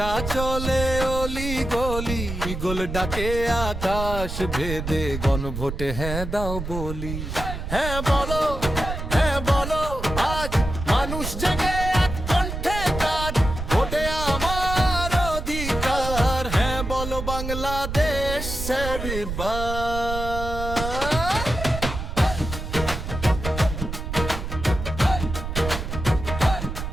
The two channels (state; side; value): noise; right; rumble, 6 dB below the sound